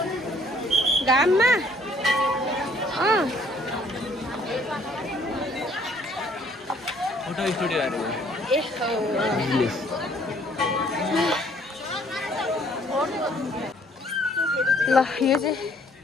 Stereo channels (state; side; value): normal; both; correlation 0.61